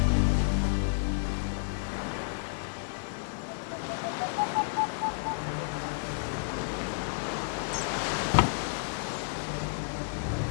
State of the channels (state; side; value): silent; right; digital silence